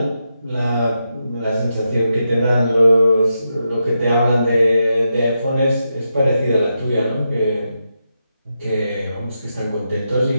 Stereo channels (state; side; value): inverted; both; correlation -0.86